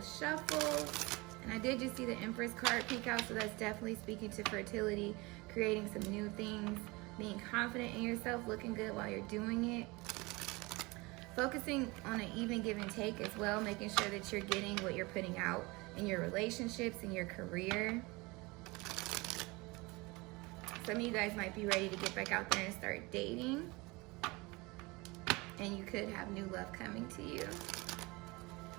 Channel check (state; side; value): quieter; left; 24.4 dB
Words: shuffles. And I did just see the Empress card peek out, so that's definitely speaking to fertility, creating some new things, being confident in yourself, looking good while you're doing it. Focusing on an even give and take as well, making sure that you're getting what you're putting out in your relationships, in your career. Some of you guys might be ready to get back out there and start dating. And you could have new love coming to you.